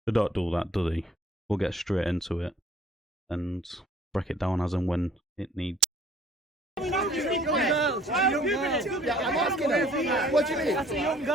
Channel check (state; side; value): normal; both; correlation 0.57